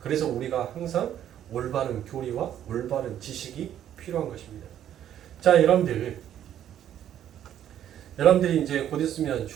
우리가 항상 올바른 교리와 올바른 지식이 필요한 것입니다. 자, 여러분들이 이제 곧 있으면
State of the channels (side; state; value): left; quieter; 10.7 dB